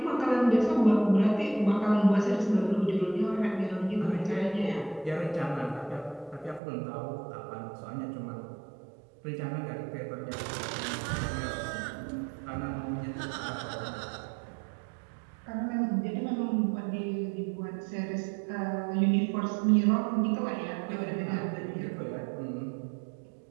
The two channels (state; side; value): drops out; left; at 6.6 s